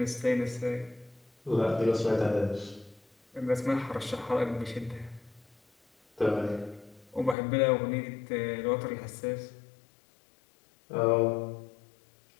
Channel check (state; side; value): drops out; right; at 7.4 s